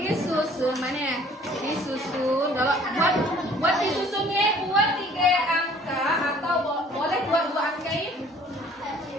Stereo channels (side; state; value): both; normal; correlation 0.55